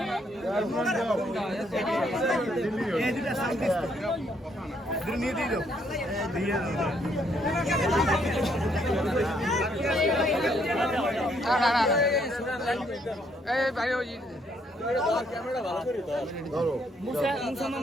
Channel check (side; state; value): both; normal; correlation 0.70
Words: এই দুটো সাইড নিয়ে দিও, দিয়ে দাও, এই ভাই ওই